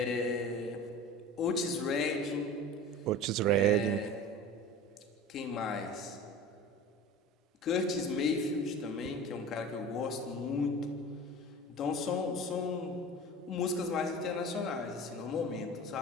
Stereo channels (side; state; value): both; normal; correlation 0.36